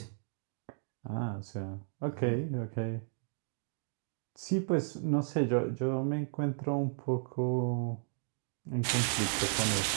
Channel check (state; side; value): silent; left; digital silence